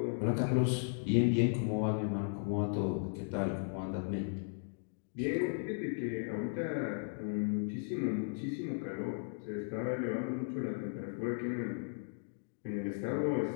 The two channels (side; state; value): right; silent; digital silence